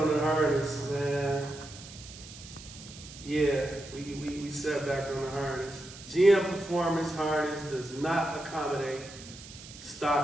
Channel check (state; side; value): noise; right; hiss, 16 dB below the sound